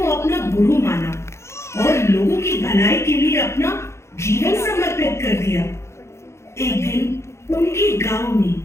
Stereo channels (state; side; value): late; right; 0.13 ms